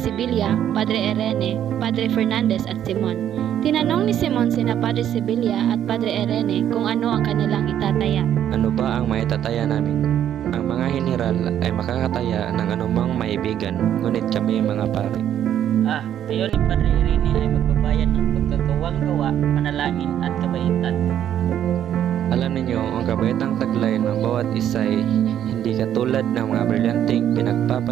Padre Irene, Padre Fernandez at Simon. Tinanong ni Simon sina Padre Sibilia at Padre Irene kung ano ang kanilang itataya. Ano ba ang maitataya namin? Ang mga general ay makakataya ng anumang maibigan, ngunit kami mga pare. Tayo ni Padre Irene ay magbabayad ng pagkagawang-gawa, panalangin at kabaitan. Alam ninyo, ang kabaitang taglay ng bawat isa ay hindi katulad ng mga brilyanteng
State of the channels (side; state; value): left; quieter; 10.4 dB